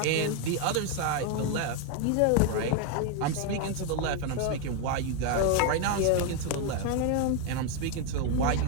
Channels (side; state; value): both; different; correlation 0.01